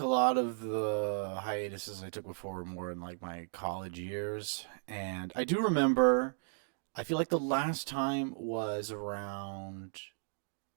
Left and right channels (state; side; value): silent; left; digital silence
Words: a lot of the hiatuses I took before were more in like my college years, and I do remember. I feel like the last time was around.